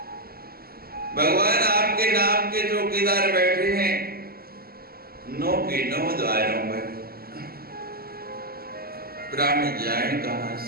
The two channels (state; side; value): late; left; 0.44 ms